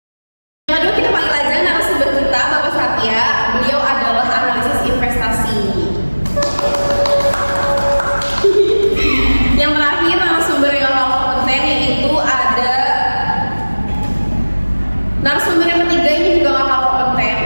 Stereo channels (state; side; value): inverted; both; correlation -1.00